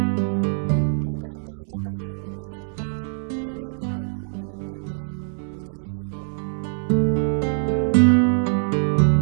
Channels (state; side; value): silent; left; digital silence